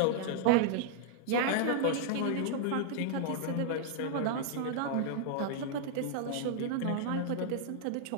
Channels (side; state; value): both; different; correlation -0.01